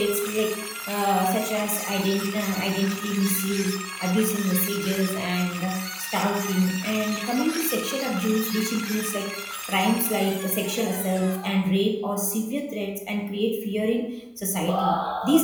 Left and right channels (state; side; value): identical; both; correlation 1.00